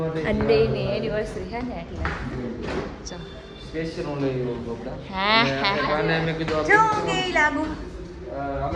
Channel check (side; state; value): both; identical; correlation 1.00